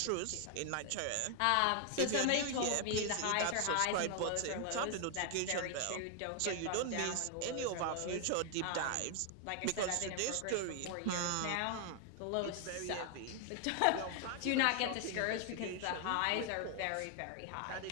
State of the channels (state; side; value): different; both; correlation 0.00